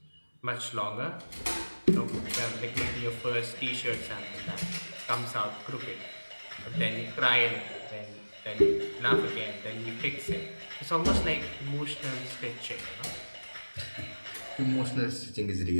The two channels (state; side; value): inverted; both; correlation -1.00